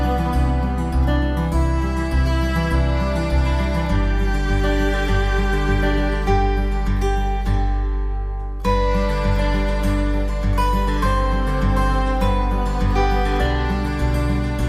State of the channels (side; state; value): both; identical; correlation 1.00